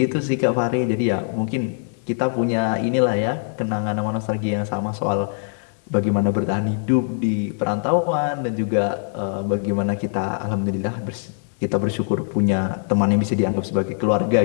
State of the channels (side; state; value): right; silent; 64 dB below the other